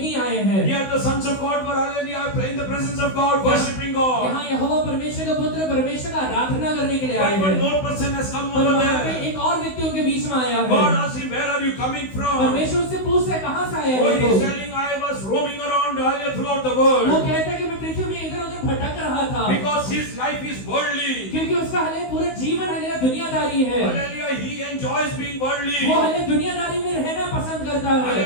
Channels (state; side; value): late; right; 16 ms